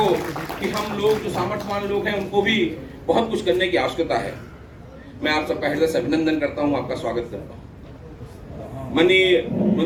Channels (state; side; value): identical; both; correlation 1.00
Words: कि हम लोग जो सामर्थ्यवान लोग हैं, उनको भी बहुत कुछ करने की आवश्यकता है। मैं आप सबका हृदय से अभिनंदन करता हूँ, आपका स्वागत करता हूँ। माननीय